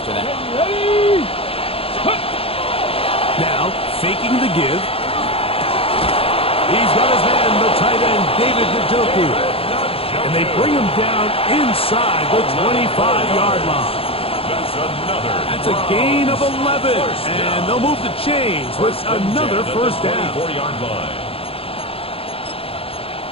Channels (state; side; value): late; right; 0.27 ms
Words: that. Now, faking the give. He's got his man, the tight end, David Njoku. And they bring him down inside the 25-yard line. That's a gain of 11. And they'll move the chains with another 1st down.